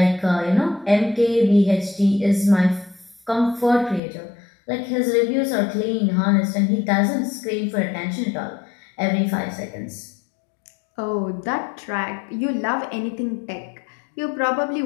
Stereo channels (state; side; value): drops out; right; at 4.0 s